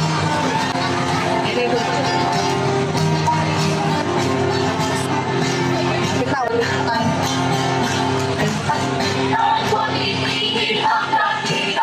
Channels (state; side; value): identical; both; correlation 1.00